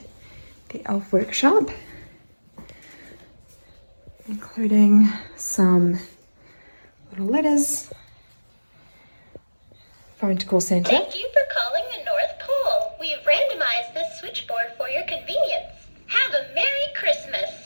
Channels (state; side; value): inverted; both; correlation -1.00